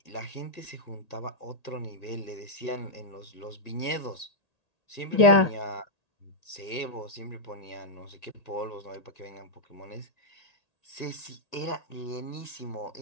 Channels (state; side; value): late; right; 1.8 ms